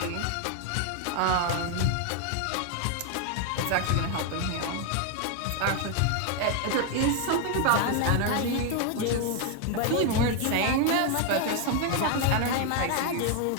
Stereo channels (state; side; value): different; both; correlation 0.01